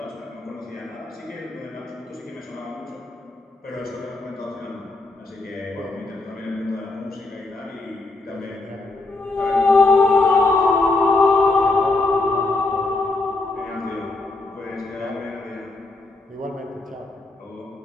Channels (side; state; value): right; quieter; 3.2 dB